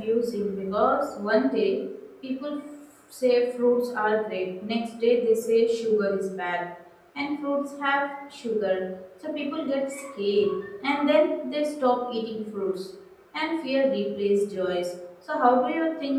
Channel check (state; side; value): identical; both; correlation 1.00